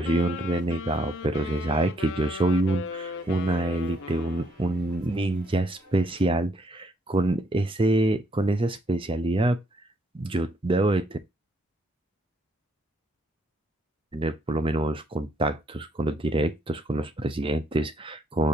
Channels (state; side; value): normal; both; correlation 0.71